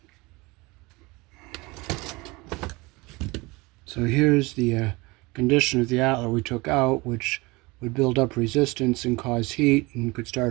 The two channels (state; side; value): quieter; left; 24.0 dB